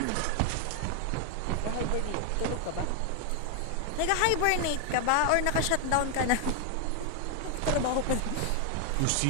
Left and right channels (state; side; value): different; both; correlation 0.00